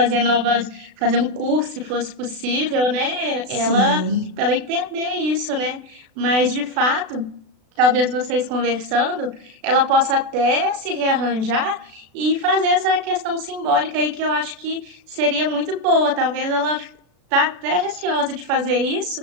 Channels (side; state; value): left; late; 36 ms